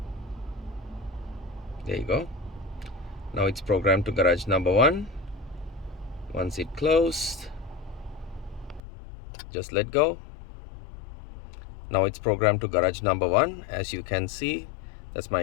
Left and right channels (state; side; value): drops out; right; at 8.8 s